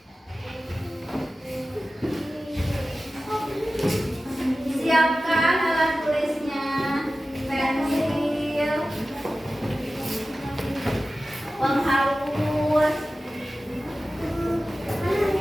Siapkan alat tulisnya, pensil, penghapus.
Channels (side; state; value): both; normal; correlation 0.95